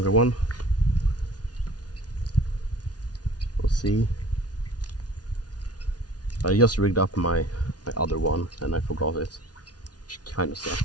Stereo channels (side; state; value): right; late; 0.69 ms